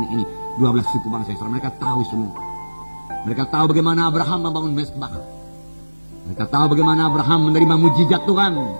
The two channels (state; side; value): inverted; both; correlation -1.00